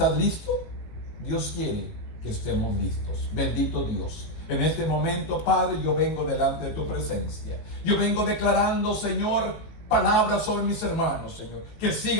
listo? Dios quiere que estemos listos. Bendito Dios. En este momento, Padre, yo vengo delante de tu presencia. Yo vengo declarando, Señor, palabras sobre mis hermanos, Señor, que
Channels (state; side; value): late; right; 18 ms